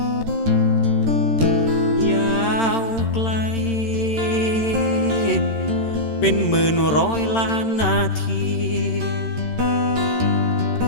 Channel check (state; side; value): late; right; 13 ms